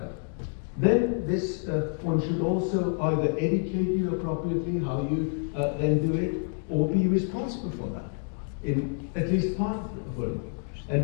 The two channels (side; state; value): right; silent; 55 dB below the other